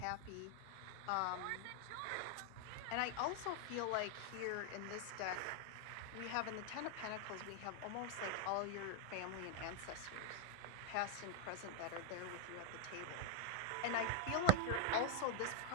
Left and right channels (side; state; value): both; different; correlation 0.01